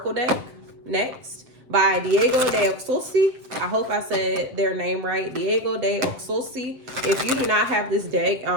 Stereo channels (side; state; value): left; late; 7.5 ms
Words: deck next by Diego de Oxosi. I hope I said their name right. Diego de Oxosi. If you do not have this deck